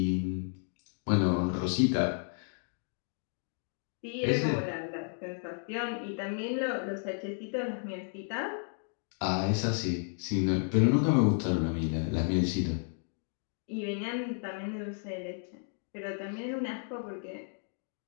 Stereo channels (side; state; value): right; silent; 56 dB below the other